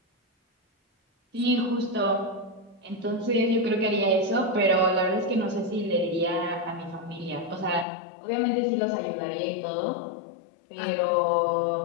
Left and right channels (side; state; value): right; drops out; at 7.9 s